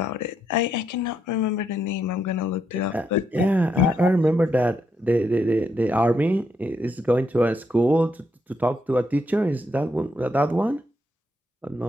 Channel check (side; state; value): both; normal; correlation 0.78